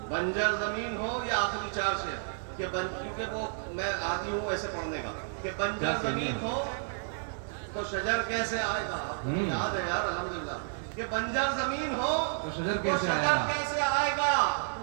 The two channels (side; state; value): left; silent; 57 dB below the other